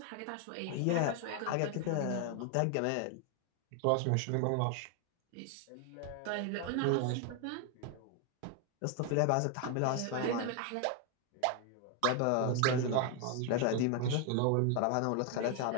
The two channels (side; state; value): both; different; correlation 0.01